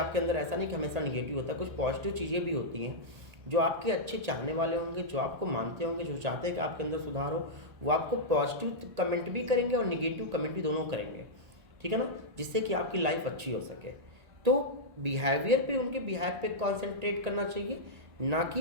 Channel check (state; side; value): late; left; 1.8 ms